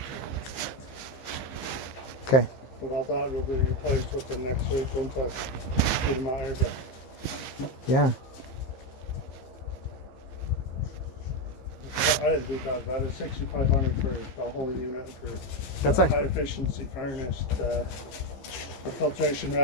Okay. But I thought it would be replaced within next week once I get them out here. But Yeah. I didn't do that. That is $6,500 for the whole unit for That's the actually- high efficiency furnace. The filtration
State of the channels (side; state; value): right; late; 15 ms